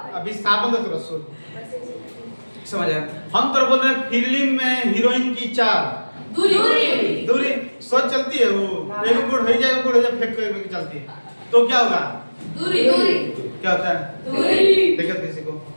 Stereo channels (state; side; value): inverted; both; correlation -1.00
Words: अभी विस्थापन तो तुरंत सोच समझ आया। हम तो बोल रहे हैं फिल्म में हीरोइन की चाल, दूरी सोच चलती है, वो एक गुड़ हो जाए फेंक के चलती है, तो क्या होगा? दूरी। क्या होता है? दूरी। देखो किसी को